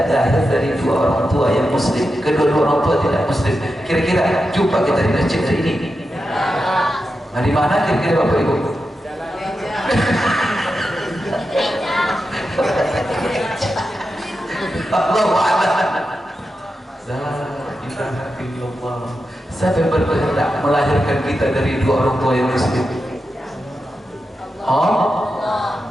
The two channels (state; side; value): normal; both; correlation 0.89